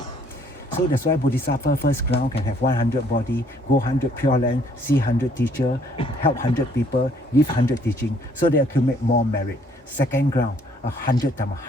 So that's why Bodhisattva first ground can have 100 body, go 100 pure land, see 100 teacher, help 100 people, give 100 teaching, so they accumulate more merit. Second ground, 100 times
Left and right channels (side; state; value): both; normal; correlation 0.63